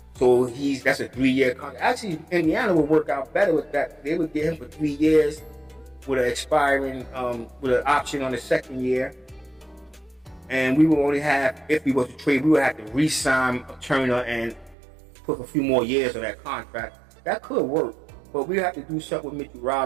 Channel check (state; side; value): drops out; left; at 14.8 s